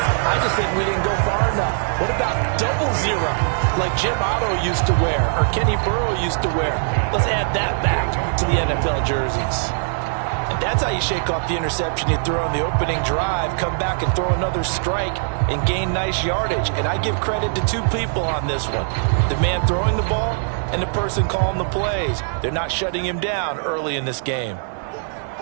I just think we didn't go far enough. What about double zero, like Jim Otto used to wear or Kenny Burrow used to wear? Let's add that back to the NFL jerseys. And that's how you shake off the interception you throw on the opening drive, come back and throw another strike and gain nice yardage. And I give credit to two people on this one. The man throwing the ball and the person calling the plays. They're not shutting him down early in this game.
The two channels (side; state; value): left; silent; digital silence